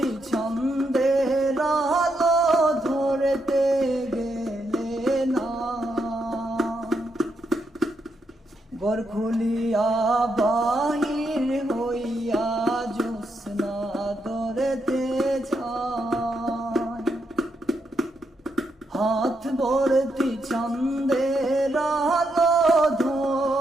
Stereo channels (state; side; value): normal; both; correlation 0.80